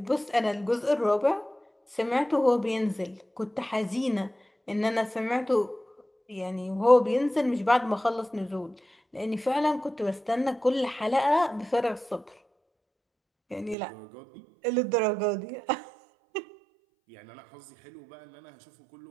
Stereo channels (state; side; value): drops out; left; at 13.8 s